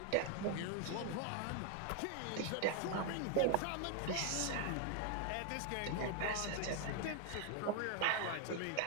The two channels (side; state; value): both; different; correlation 0.00